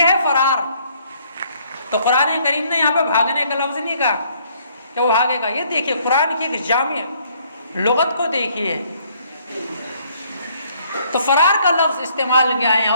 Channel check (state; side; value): inverted; both; correlation -0.65